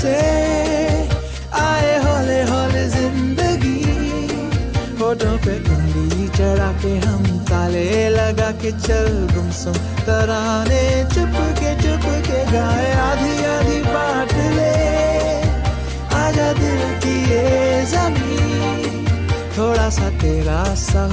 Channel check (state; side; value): identical; both; correlation 1.00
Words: आए हौले हौले जिंदगी, होठों पे उंगली चढ़ा के हम ताले लगा के चल गुमसुम तराने चुप के गाए। आधी आधी बांट ले आजा दिल की ये ज़मीन, थोड़ा सा तेरा सा